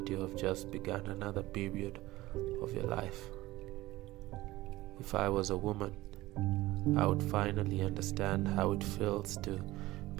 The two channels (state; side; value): quieter; left; 18.0 dB